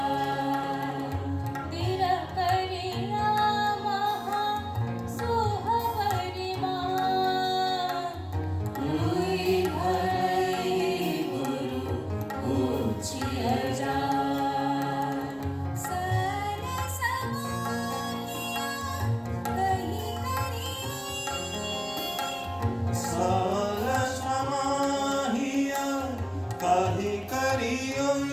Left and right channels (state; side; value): identical; both; correlation 1.00